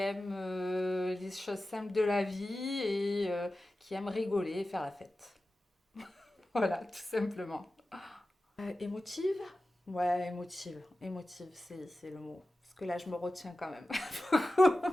les choses simples de la vie et qui aime rigoler et faire la fête. Voilà, tout simplement. Émotive? Ouais, émotive. Émotive, c'est le mot. Parce que là, je me retiens quand même.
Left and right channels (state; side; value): normal; both; correlation 0.94